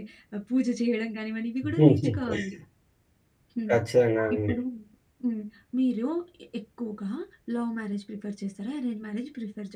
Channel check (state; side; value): identical; both; correlation 1.00